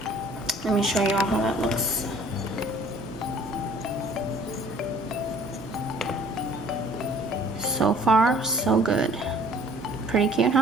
Let me show you all how that looks. So far, so good. Pretty cute,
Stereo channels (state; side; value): normal; both; correlation 0.54